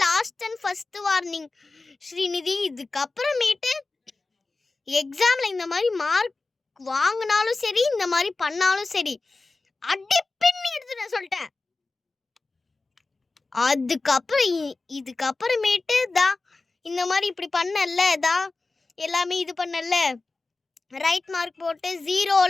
last and first warning Srinidhi. இதுக்கப்புறமேட்டு எக்ஸாம்ல இந்த மாதிரி மார்க் வாங்கினாலும் சரி, இந்த மாதிரி பண்ணாலும் சரி, அடி பின்னி எடுத்துட்டேன் சொல்லிட்டேன். அதுக்கப்புறம் இதுக்கப்புறமேட்டு தான் இந்த மாதிரி இப்படி பண்ணல தான் எல்லாமே இது பண்ணல ரைட் மார்க் போட்டு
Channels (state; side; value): quieter; right; 3.6 dB